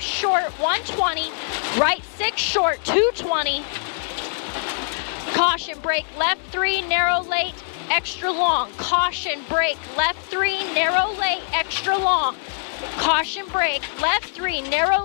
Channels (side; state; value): right; silent; digital silence